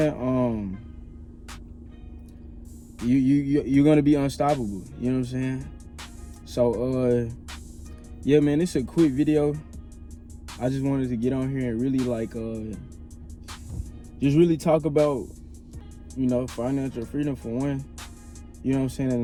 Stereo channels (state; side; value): identical; both; correlation 1.00